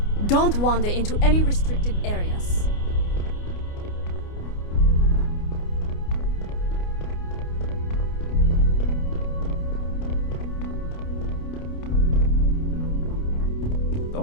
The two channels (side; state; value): right; late; 29 ms